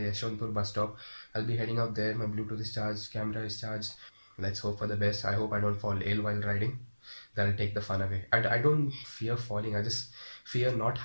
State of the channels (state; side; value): inverted; both; correlation -1.00